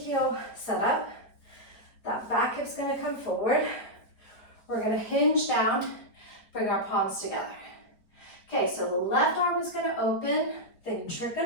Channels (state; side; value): late; right; 4.9 ms